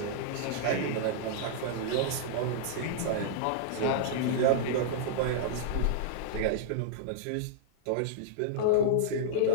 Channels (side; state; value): both; different; correlation -0.02